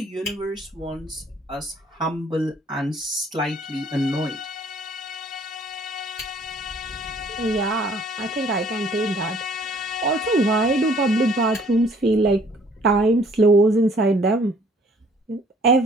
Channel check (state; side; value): normal; both; correlation 0.58